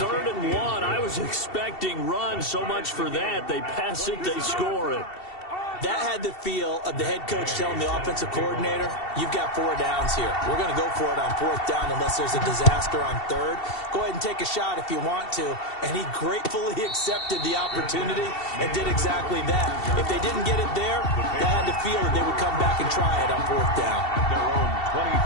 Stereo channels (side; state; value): right; late; 2.7 ms